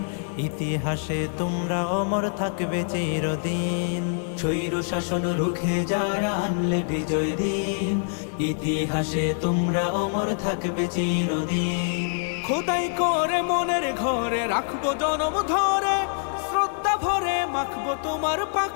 ইতিহাসে তোমরা অমর থাকবে চিরদিন। স্বৈর শাসন রুখে যারা আনলে বিজয় দিন, ইতিহাসে তোমরা অমর থাকবে চিরদিন। খোদাই করে মনের ঘরে রাখবো জনম ধরে, শ্রদ্ধা ভরে মাখবো তোমার পাক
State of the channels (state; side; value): silent; right; digital silence